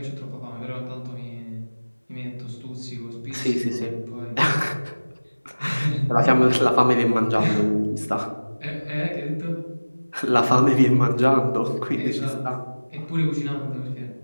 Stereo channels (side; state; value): both; inverted; correlation -1.00